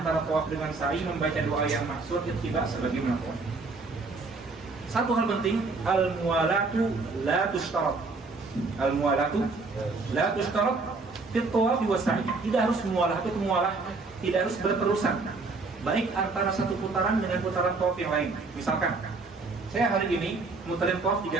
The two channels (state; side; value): quieter; left; 3.8 dB